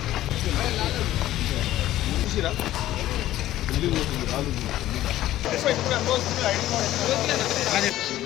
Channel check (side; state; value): right; quieter; 14.3 dB